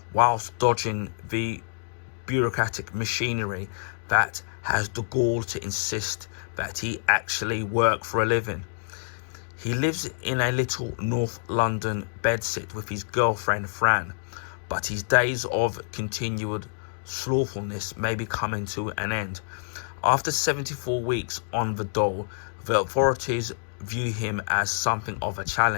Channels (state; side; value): silent; right; digital silence